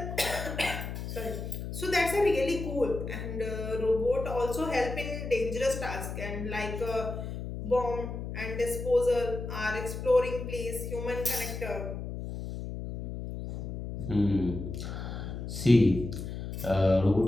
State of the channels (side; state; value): left; noise; hum, 6 dB below the sound